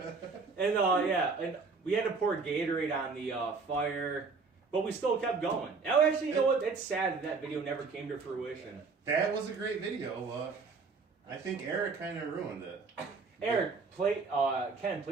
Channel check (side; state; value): left; quieter; 4.6 dB